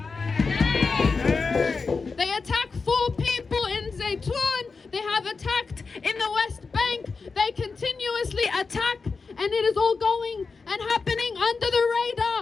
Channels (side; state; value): right; quieter; 4.6 dB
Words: They attacked 4 people in Zaytoun. They have attacked in the West Bank. They continuously attack, and it is all going and happening under the